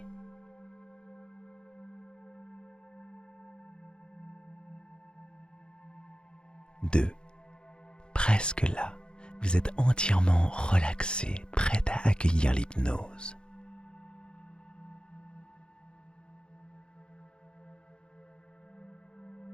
2. Presque là, vous êtes entièrement relaxé, prêt à accueillir l'hypnose.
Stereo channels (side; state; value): right; late; 0.051 ms